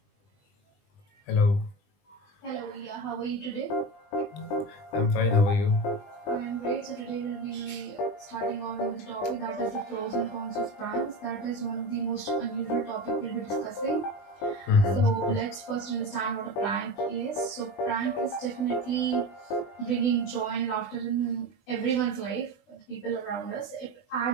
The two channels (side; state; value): right; late; 20 ms